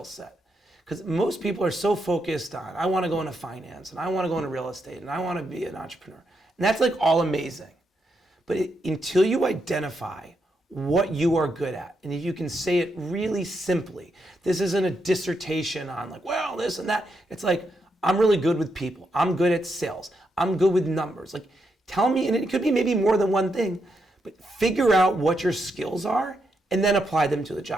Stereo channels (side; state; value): both; normal; correlation 0.81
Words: set? Because most people are so focused on, I want to go into finance, and I want to go into real estate, and I want to be an entrepreneur. And that's like all amazing. But until you identify what you are good at, and if you can say it really simply, this isn't a dissertation on like, well, this and that. It's like, I'm really good with people. I'm good at sales. I'm good with numbers. Like, tell me, and it could be maybe more than one thing, but figure out what your skills are and then apply them to the